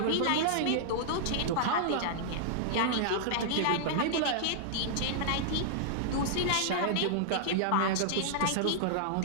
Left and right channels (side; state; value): both; different; correlation -0.01